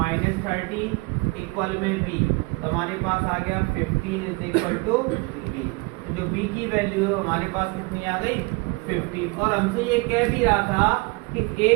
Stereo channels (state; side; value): quieter; left; 27.5 dB